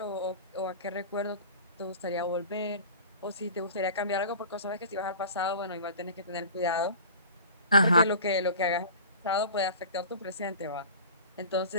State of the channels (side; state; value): both; inverted; correlation -0.41